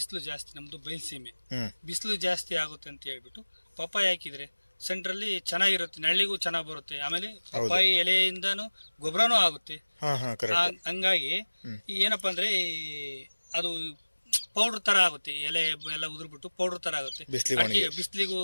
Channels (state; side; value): inverted; both; correlation -1.00